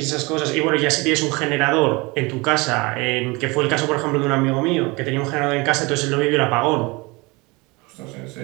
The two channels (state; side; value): quieter; left; 25.4 dB